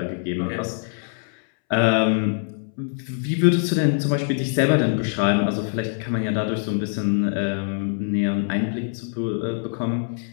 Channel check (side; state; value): right; silent; 63 dB below the other